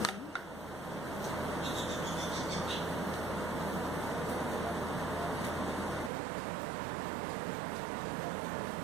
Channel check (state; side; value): drops out; left; at 6.1 s